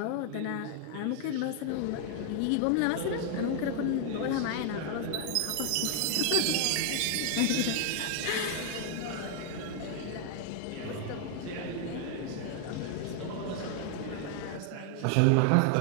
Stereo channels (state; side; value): different; both; correlation 0.00